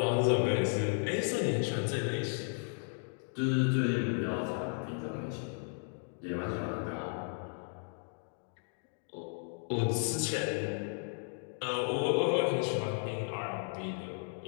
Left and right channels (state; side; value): silent; right; 55 dB below the other